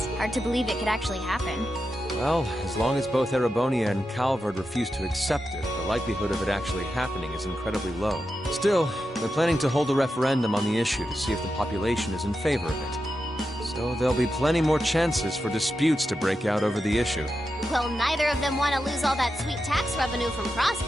Hard to believe it could actually happen. Well, as long as both Erebonia and Calvard refuse to accept it, the likelihood of it actually happening is incredibly low. Still, they're planning to hold a referendum on the issue to see if the population is in favor of it. So there'll be plenty more chances for disputes to break out over the issue. Well, neither of them want to lose all that sweet tax revenue from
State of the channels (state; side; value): normal; both; correlation 0.89